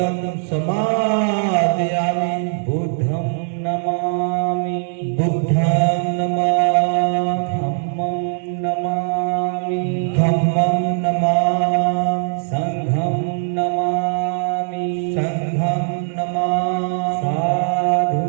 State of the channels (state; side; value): silent; left; digital silence